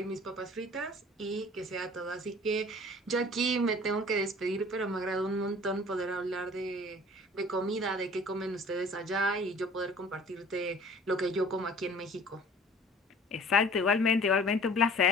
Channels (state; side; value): normal; both; correlation 0.48